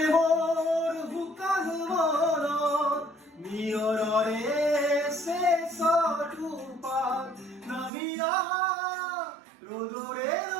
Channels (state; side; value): drops out; left; at 7.9 s